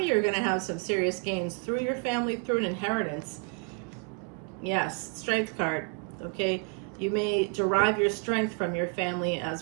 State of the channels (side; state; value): left; quieter; 35.0 dB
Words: you are going to have some serious gains through your family, through an inheritance. Yes, Strength card, okay? You may derive your strength from your family as